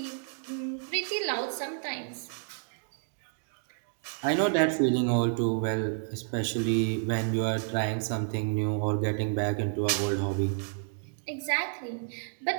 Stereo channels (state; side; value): silent; left; digital silence